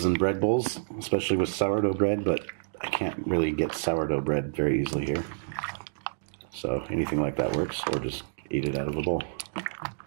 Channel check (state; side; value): silent; left; digital silence